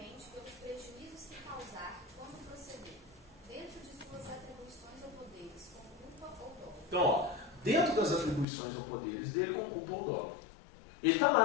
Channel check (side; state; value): right; drops out; at 8.5 s